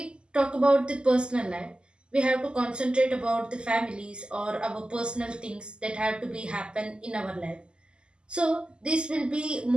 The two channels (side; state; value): left; late; 0.049 ms